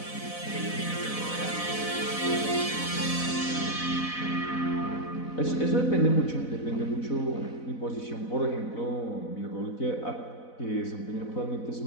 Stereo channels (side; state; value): right; late; 4.0 ms